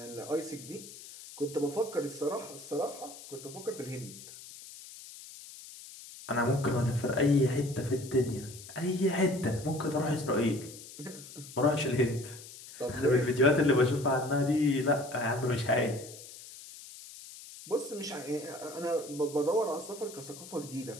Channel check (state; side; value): noise; left; hiss, 16 dB below the sound